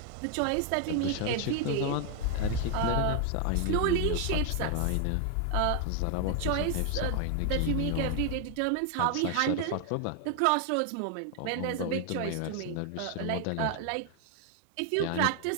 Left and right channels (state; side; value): different; both; correlation 0.00